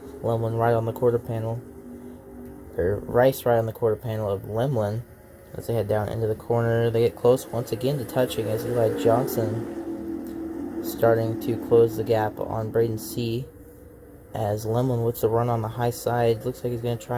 Lemlin right on the quarter panel, or Rice right on the quarter panel of Lemlin. As they head down into the corner, they get close once again to touching, as Eli Johnson starting to close the gap on Braden C. As Lemlin with the run on the high side, looks like he's going to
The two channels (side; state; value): both; identical; correlation 1.00